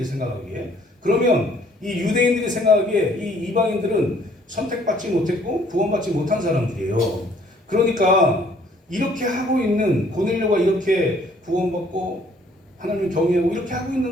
생각하기에. 그러면 이 유대인들이 생각하기에 이 이방인들은 선택받지 못했고 구원받지 못한 사람들이에요. 그러니까 이렇게 하고 있는 고넬료가 이렇게 구원받고 하나님을 경외하고 이렇게 하고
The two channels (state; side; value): normal; both; correlation 0.60